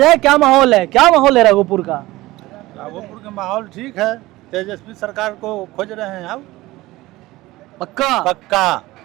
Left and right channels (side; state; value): left; quieter; 18.6 dB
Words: क्या माहौल है, क्या माहौल है राघोपुर का? राघोपुर का माहौल ठीक है, तेजस्वी सरकार को खोज रहे हैं। अब पक्का पक्का